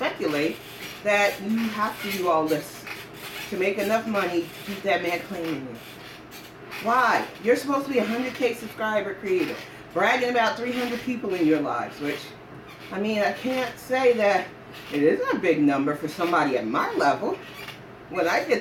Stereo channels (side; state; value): both; identical; correlation 1.00